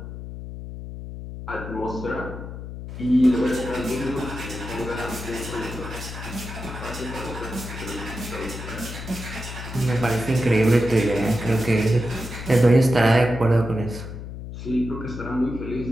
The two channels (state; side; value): noise; left; hum, 9 dB below the sound